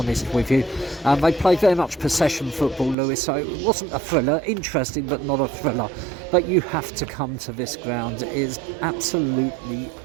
with you. They played very much possession football, Lewes, so it wasn't a thriller. Interesting, but not a thriller. But you have to come to this ground. It is absolutely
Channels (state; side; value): drops out; left; at 3.0 s